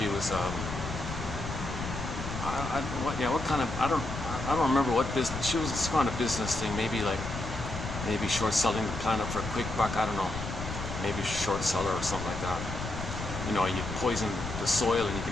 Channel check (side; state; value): left; noise; rumble, 7 dB below the sound